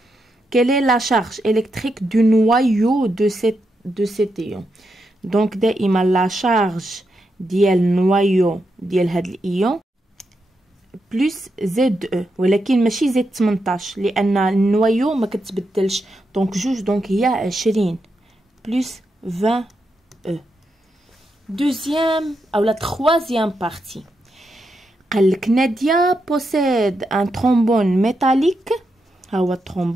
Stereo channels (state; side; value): normal; both; correlation 0.84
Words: quelle est la charge électrique du noyau de cet ion? donc دائما لا شارج ديال النوايو ديال هاد الايون بلس زد او، ولكن ماشي زد 18 لان النوايو ما كتبدلش. دونك جوج، دونك هي 20 بلس 20 او. دوزيام او لا تخوازيام بارتي، قالك نادية بوسيد ان ترومبون ميتاليك. ها هو